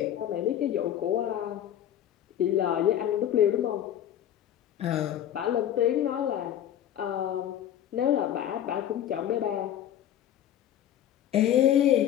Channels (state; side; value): quieter; right; 10.9 dB